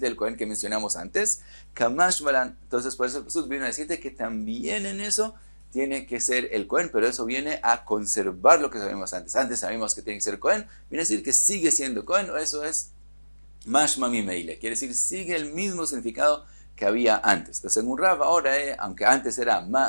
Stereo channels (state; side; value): inverted; both; correlation -1.00